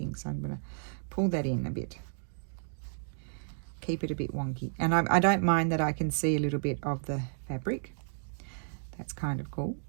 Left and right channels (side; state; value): left; silent; digital silence